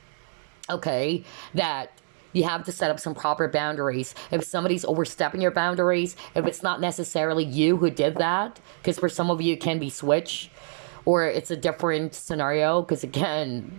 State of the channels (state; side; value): silent; left; 61 dB below the other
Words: Okay, that you have to set up some proper boundaries. If somebody's overstepping your boundaries, if it's not necessarily you who did that, because for some of you it can be switch, or it's a different scenario, because again,